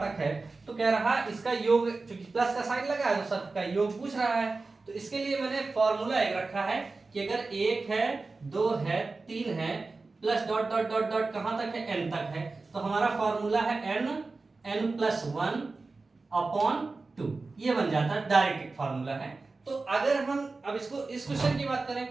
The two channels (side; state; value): left; quieter; 3.7 dB